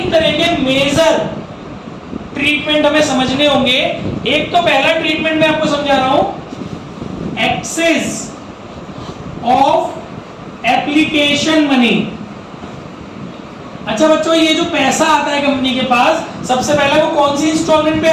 तरह के मेजर ट्रीटमेंट हमें समझने होंगे। एक तो पहला ट्रीटमेंट मैं आपको समझा रहा हूं, एक्सेस ऑफ एप्लीकेशन मनी। अच्छा बच्चों, ये जो पैसा आता है कंपनी के पास, सबसे पहले वो कौन सी इंस्टॉलमेंट पे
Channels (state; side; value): identical; both; correlation 1.00